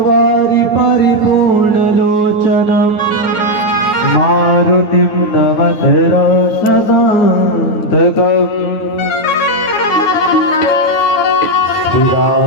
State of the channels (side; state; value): right; late; 9.5 ms